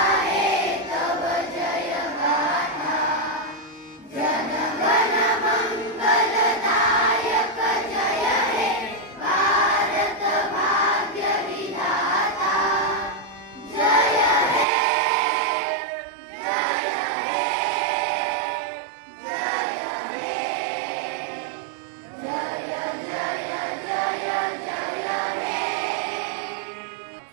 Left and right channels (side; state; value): left; drops out; at 14.7 s